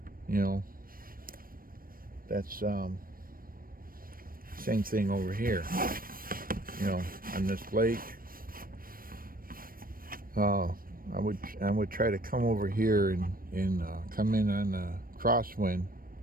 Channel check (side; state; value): left; late; 0.41 ms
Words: That's same thing over here. On this lake, I would try to come over here and come in on the crosswind,